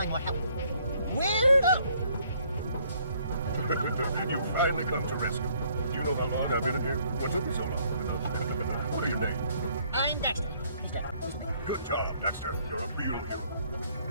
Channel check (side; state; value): both; inverted; correlation -0.65